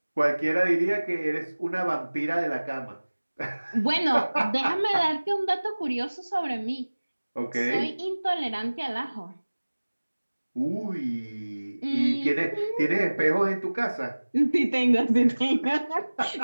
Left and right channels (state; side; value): inverted; both; correlation -1.00